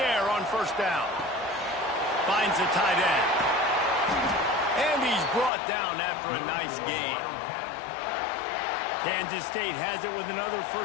on first down. Finds the tight end. And he's brought down after a nice gain. Kansas State has it with another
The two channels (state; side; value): drops out; right; at 5.5 s